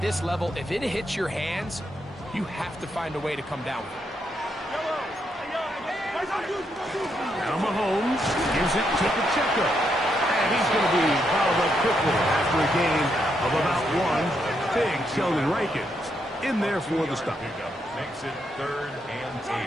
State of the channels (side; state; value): both; normal; correlation 0.79